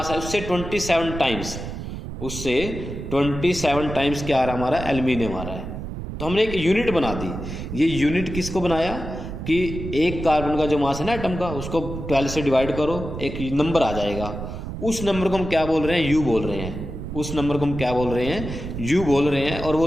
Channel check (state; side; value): noise; right; rumble, 7 dB below the sound